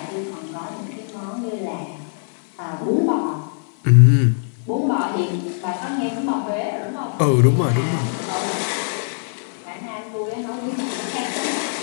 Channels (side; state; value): right; silent; 57 dB below the other